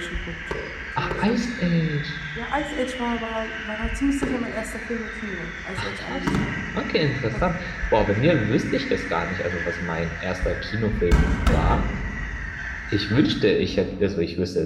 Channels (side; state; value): both; identical; correlation 1.00